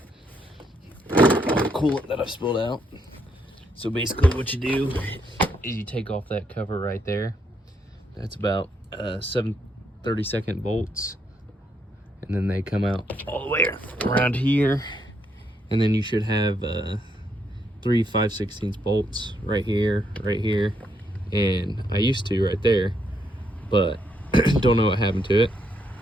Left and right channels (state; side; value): normal; both; correlation 0.76